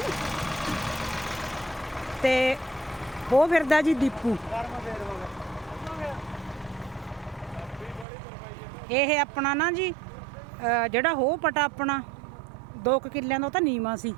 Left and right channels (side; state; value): left; drops out; at 8.1 s